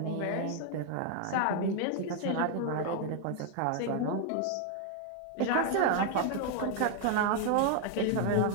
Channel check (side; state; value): both; different; correlation 0.00